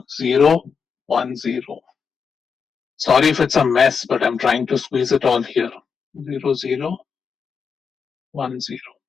0, 1, 0. Sorry if it's a mess, but I'm trying to squeeze it all here. 0, 0, 1, 0.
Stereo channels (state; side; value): quieter; right; 6.0 dB